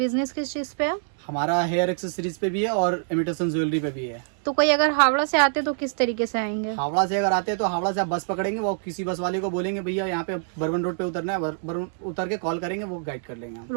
किस चीज पे है? हमारा हेयर एक्सेसरीज पे भी है और इमिटेशन ज्वेलरी पे भी है। तो कोई अगर हावड़ा से आते तो किस तरीके से आएंगे? हावड़ा से अगर आते हैं तो हावड़ा से आप बस पकड़ेंगे, वो किसी बस वाले को बोलेंगे भैया यहाँ पे बर्बन रोड पे उतरना है, बर्बन उतर के कॉल करेंगे, वो गाइड कर लेंगे हम।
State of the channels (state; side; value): silent; left; digital silence